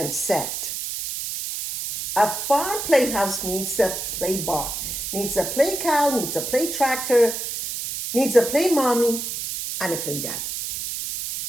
said, "A farm playhouse needs a play barn, needs a play cow, needs a play tractor, needs a play mommy, and a play daddy."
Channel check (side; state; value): right; noise; hiss, 4 dB below the sound